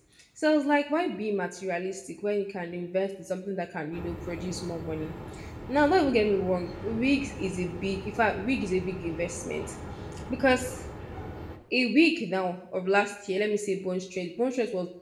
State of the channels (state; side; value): identical; both; correlation 1.00